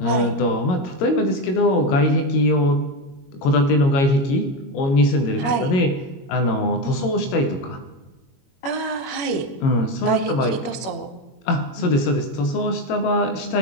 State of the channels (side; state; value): right; late; 22 ms